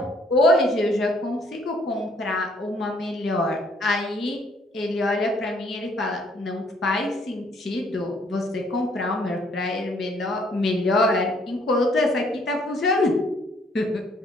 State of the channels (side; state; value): both; normal; correlation 0.64